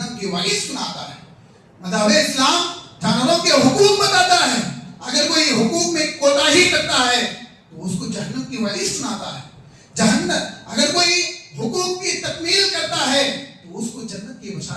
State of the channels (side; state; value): both; identical; correlation 1.00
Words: کی وعید سناتا ہے۔ مذہب اسلام جانوروں کے حقوق بتاتا ہے، اگر کوئی حقوق میں کوتاہی کرتا ہے تو اس کو جہنم کی وعید سناتا ہے۔ جہنم اگر کوئی حقوق کی تکمیل کرتا ہے تو اس کو جنت کی